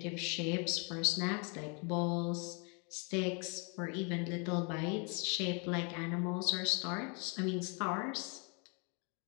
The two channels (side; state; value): right; quieter; 35.0 dB